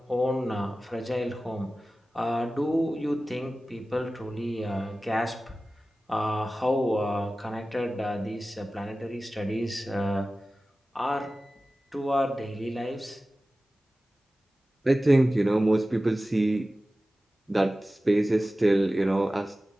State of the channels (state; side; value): normal; both; correlation 0.96